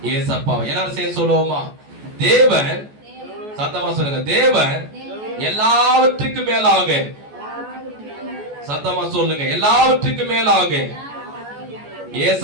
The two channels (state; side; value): late; left; 14 ms